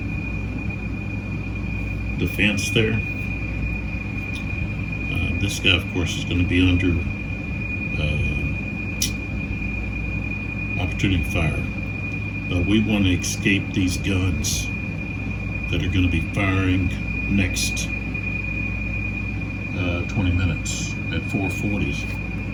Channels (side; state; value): both; identical; correlation 1.00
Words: defense there, this guy, of course, is going to be under opportunity fire. But we want to escape these guns that are going to be firing next 20 minutes at 4:40.